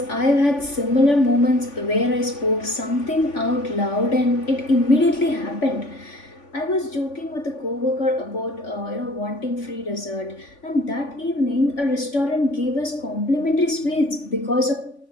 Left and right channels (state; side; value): late; right; 3.5 ms